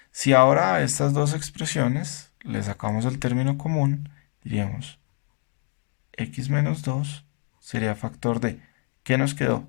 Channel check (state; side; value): quieter; right; 39.6 dB